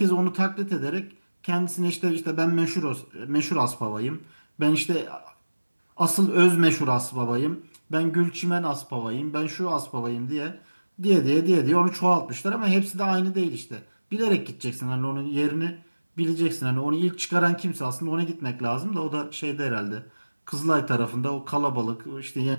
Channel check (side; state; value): both; inverted; correlation -1.00